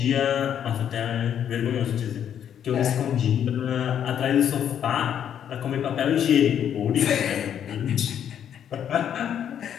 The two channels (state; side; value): quieter; right; 9.3 dB